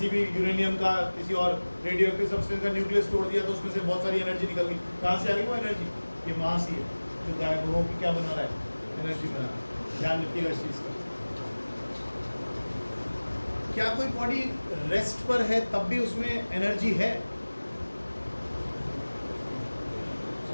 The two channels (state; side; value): inverted; both; correlation -1.00